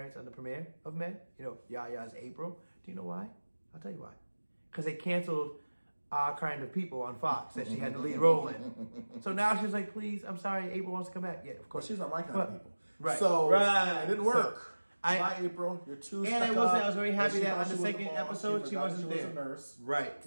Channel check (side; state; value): both; inverted; correlation -1.00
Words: on the premiere of Med. You know, Yaya's April. Do you know why? I'll tell you why. Because they canceled Our Kind of People on Fox that she had the lead role in. So now she's like, please, I'm sorry, April wants to come back. Yeah, of course. Well, she's not my kind of people. Right. So it didn't work. So, Bye, April. You're too stuck and I was very happy that on the was second boss. episode she wasn't was there. a nurse. Right.